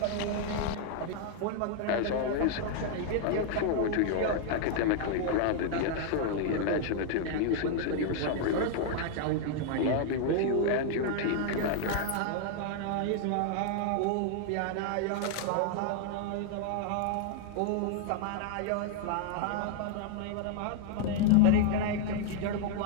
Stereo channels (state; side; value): different; both; correlation 0.00